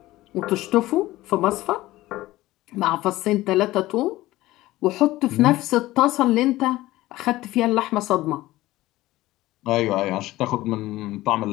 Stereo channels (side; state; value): right; quieter; 17.2 dB